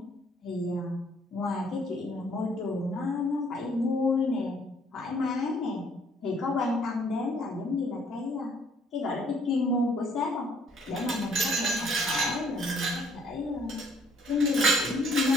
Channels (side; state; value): both; normal; correlation 0.62